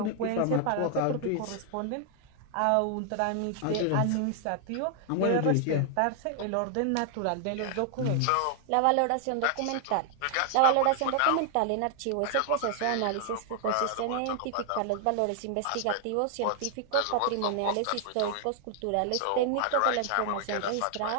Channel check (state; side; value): different; both; correlation 0.00